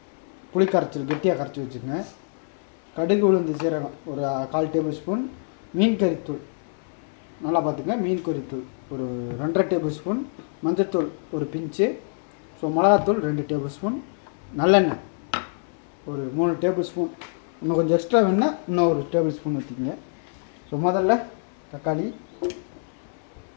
புளி கரைச்சல் கெட்டியாக கரைச்சி வச்சுக்கோங்க. கடுகு உளுந்து சீரகம் ஒரு 1/4 டேபிள் ஸ்பூன். மீன் கறித்தூள் நல்லா பார்த்துங்க. மீன் கறித்தூள் ஒரு 2.5 டேபிள் ஸ்பூன். மஞ்சத்தூள் ஒரு பிஞ்சு. ஸோ மிளகாத்தூள் 2 டேபிள் ஸ்பூன். நல்லெண்ணெய் ஒரு 3 டேபிள் ஸ்பூன். இன்னும் கொஞ்சம் எக்ஸ்ட்ரா வேணுன்னா இன்னும் ஒரு டேபிள் ஸ்பூன் ஊற்றிக்கங்க. ஸோ முதல்ல தக்காளி,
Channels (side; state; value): right; silent; digital silence